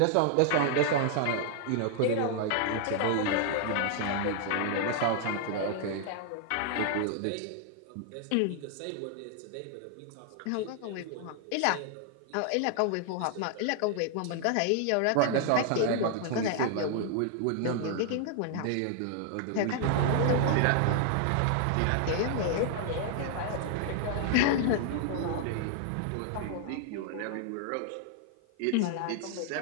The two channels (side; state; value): both; different; correlation 0.00